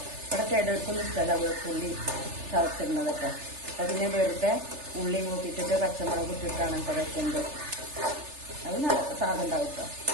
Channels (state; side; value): late; left; 3.3 ms